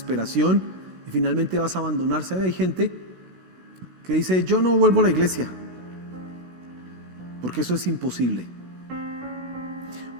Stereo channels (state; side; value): late; left; 17 ms